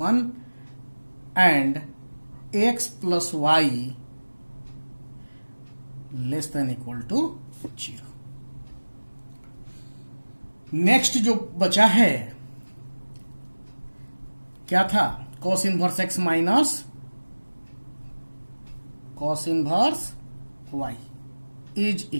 1 and x plus y less than equal to 0। Next जो बचा है क्या था, cos inverse x minus cos inverse y is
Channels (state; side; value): inverted; both; correlation -1.00